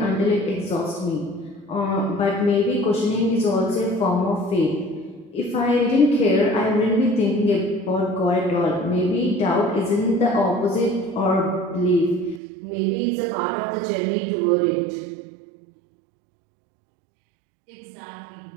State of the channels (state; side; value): drops out; left; at 12.4 s